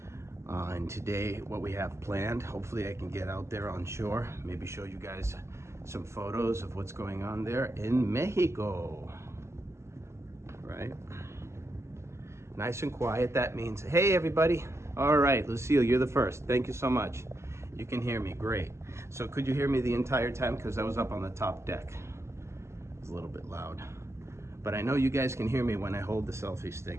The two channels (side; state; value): left; late; 0.13 ms